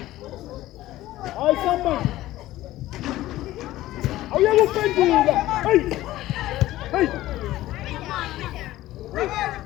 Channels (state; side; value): quieter; right; 15.8 dB